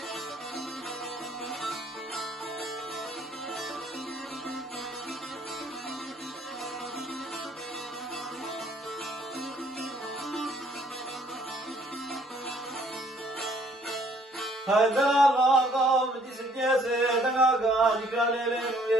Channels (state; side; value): normal; both; correlation 0.62